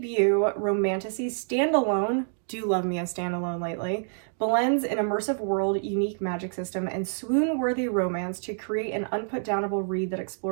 romantasy standalone, do love me a standalone lately, blends an immersive world, unique magic system, and swoon-worthy romance to create an unput-downable read that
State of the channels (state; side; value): silent; left; digital silence